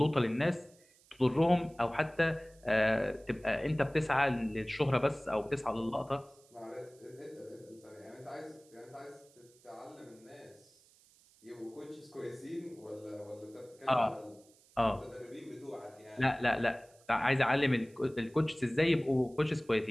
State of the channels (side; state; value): right; noise; hiss, 29 dB below the sound